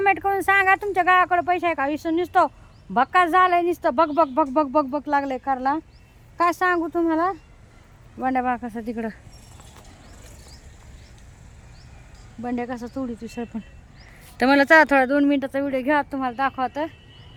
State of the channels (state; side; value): identical; both; correlation 1.00